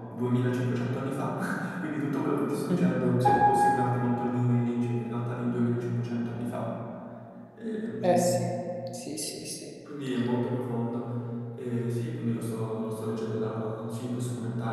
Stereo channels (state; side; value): identical; both; correlation 1.00